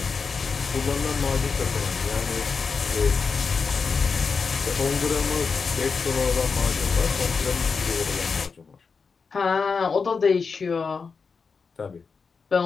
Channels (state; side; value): quieter; right; 5.2 dB